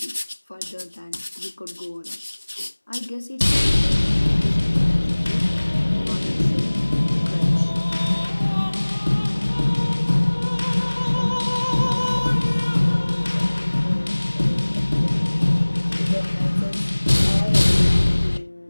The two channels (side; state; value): both; inverted; correlation -1.00